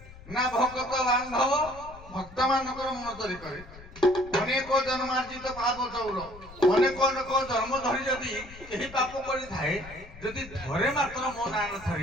ନା ଭଗତ ବାନ୍ଧବ ଭକ୍ତ ମାନଙ୍କର ମନ ଚୋରି କରେ ଅନେକ ଜନ୍ମାର୍ଜିତ ପାପ ଚୌର ଅନେକ ଅନେକ ଜନ୍ମ ଧରି ଯଦି କେହି ପାପ କରିଥାଏ ଯଦି ଥରେ ମାତ୍ର ମୋ ନାଁ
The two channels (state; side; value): noise; left; rumble, 17 dB below the sound